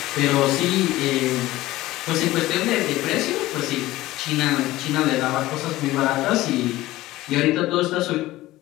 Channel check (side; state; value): right; quieter; 17.1 dB